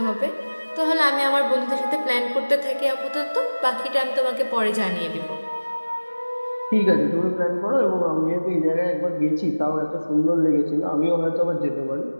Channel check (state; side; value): inverted; both; correlation -1.00